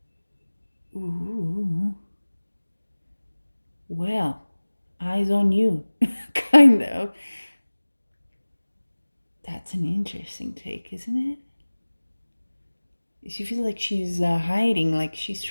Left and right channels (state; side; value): inverted; both; correlation -1.00